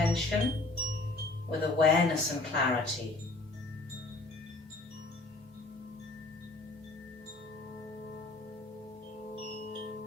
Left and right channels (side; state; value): right; quieter; 3.1 dB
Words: with awareness and clarity.